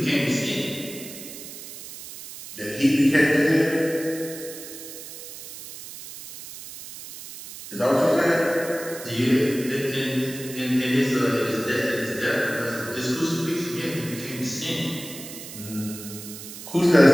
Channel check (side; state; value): right; noise; hiss, 13 dB below the sound